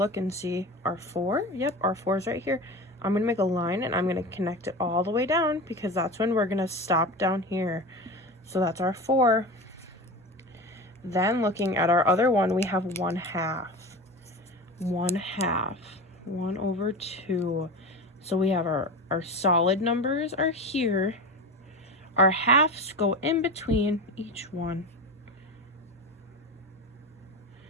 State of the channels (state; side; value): normal; both; correlation 0.28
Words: and see our 4. Yep, our 4 is right here. I'm going to make a line and I'm going to connect it all the way down because that's when we're going to stop down here. So that's our 4. Then looking at our other one, we have 1/2. 1/2. 1/2. So we have our solid numbers are here. Our halves go in between each one.